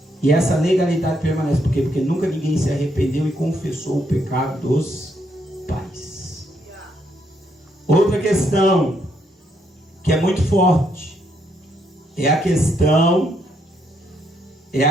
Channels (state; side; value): normal; both; correlation 0.75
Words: E essa legalidade permanece. Por quê? Porque nunca ninguém se arrependeu e confessou o pecado dos pais. Outra questão que é muito forte é a questão